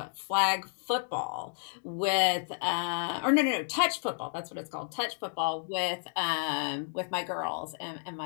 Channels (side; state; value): right; silent; digital silence